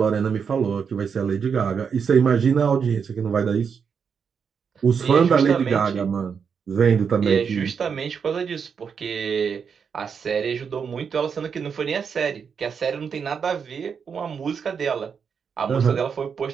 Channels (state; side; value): quieter; left; 6.5 dB